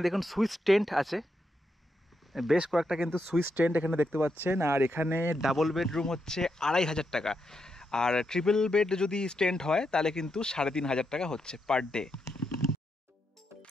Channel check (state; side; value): normal; both; correlation 0.83